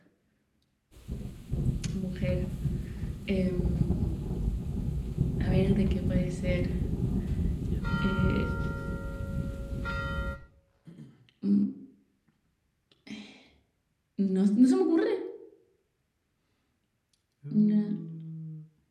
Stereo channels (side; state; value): both; identical; correlation 1.00